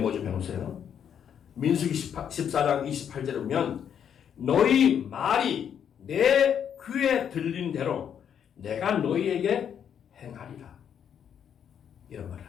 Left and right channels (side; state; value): right; quieter; 8.5 dB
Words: 좀 해놓으세요. 민수기 14장 28절에 보면 너희 말이 내 귀에 들린 대로 내가 너희에게 행하리라. 이런 말을